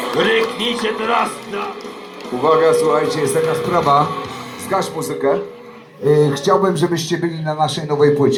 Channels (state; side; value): identical; both; correlation 1.00